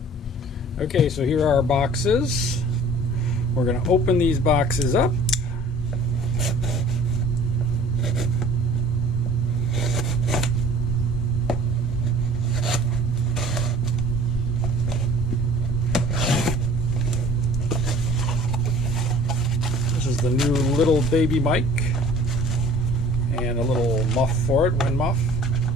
Okay, so here are our boxes. We're going to open these boxes up. This is the new little baby mic and a little muff for it, wind muff.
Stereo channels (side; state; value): both; normal; correlation 0.49